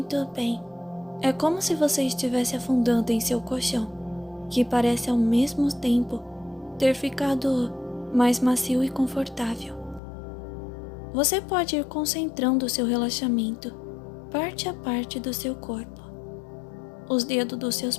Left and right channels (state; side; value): drops out; right; at 10.0 s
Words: bem. É como se você estivesse afundando em seu colchão, que parece ao mesmo tempo ter ficado mais macio e confortável. Você pode ir concentrando o seu relaxamento parte a parte do seu corpo. Os dedos dos seus